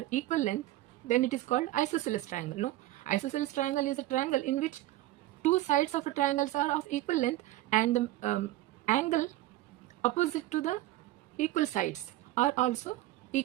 equal length, then it is called isosceles triangle. No, isosceles triangle is a triangle in which two sides of a triangle are of equal length, and the angle opposite to the equal sides are also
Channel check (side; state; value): left; quieter; 15.9 dB